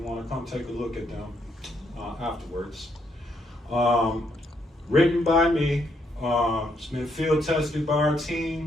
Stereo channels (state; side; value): normal; both; correlation 0.74